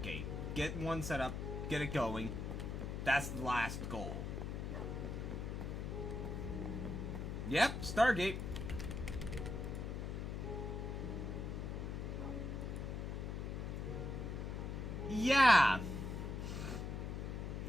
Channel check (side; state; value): left; noise; hum, 4 dB below the sound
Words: Get one set up, get it going. That's the last goal. Yep, Stargate. Yeah.